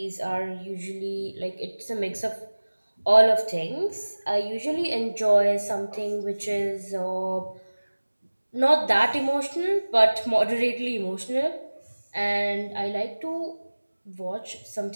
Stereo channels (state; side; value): inverted; both; correlation -1.00